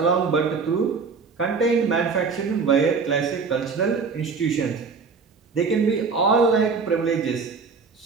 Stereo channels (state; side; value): quieter; left; 5.0 dB